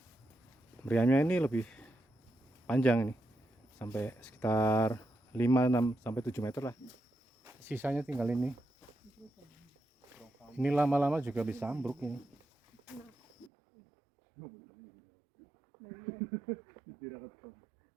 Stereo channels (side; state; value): left; drops out; at 13.5 s